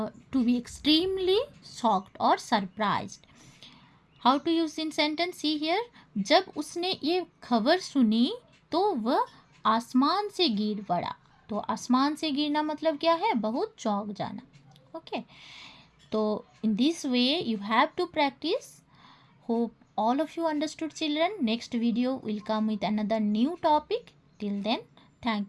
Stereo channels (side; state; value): both; identical; correlation 1.00